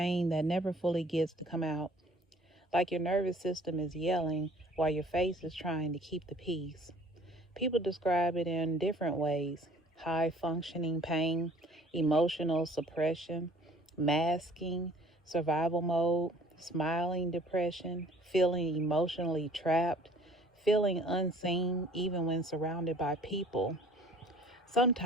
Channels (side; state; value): both; normal; correlation 0.53